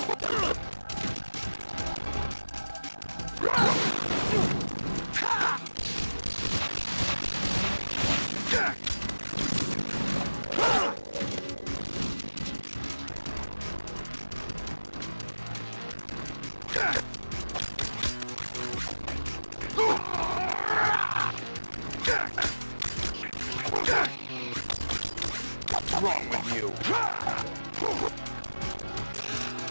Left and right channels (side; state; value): both; inverted; correlation -1.00